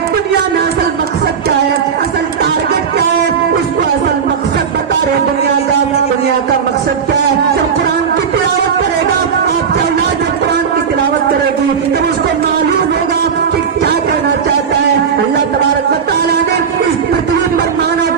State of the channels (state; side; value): quieter; left; 6.7 dB